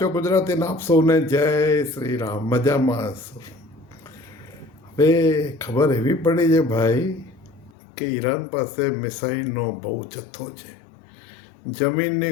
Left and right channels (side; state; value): right; drops out; at 7.7 s